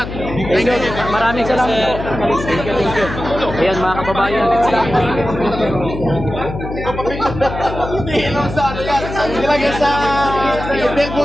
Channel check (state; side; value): noise; left; hum, 8 dB below the sound